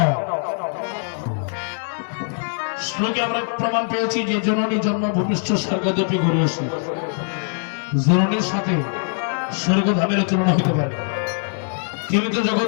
শ্লোকে আমরা প্রমাণ পেয়েছি যে জননী জন্ম ভূমিষ্ঠ স্বর্গদপি ঘুরে আসে, জননীর সাথে স্বর্গধামের তুলনা হতে পারে। তিনি তো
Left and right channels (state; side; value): silent; right; 55 dB below the other